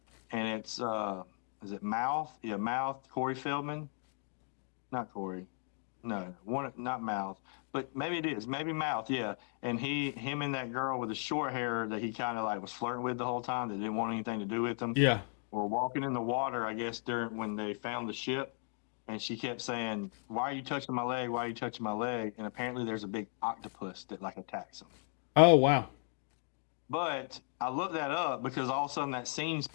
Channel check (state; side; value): silent; right; 54 dB below the other